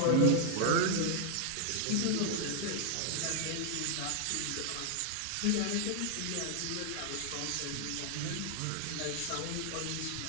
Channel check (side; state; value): both; different; correlation 0.00